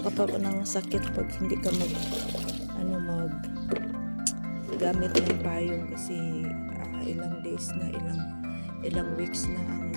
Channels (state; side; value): inverted; both; correlation -1.00